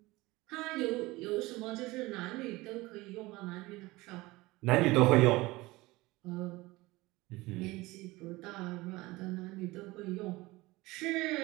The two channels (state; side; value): quieter; left; 20.8 dB